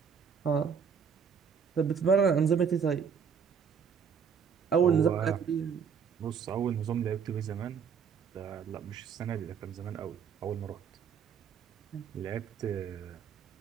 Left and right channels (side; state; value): left; quieter; 6.8 dB